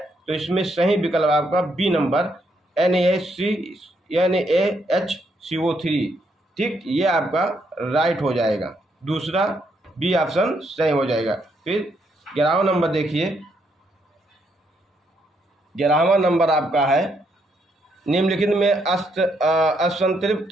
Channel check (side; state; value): both; normal; correlation 0.75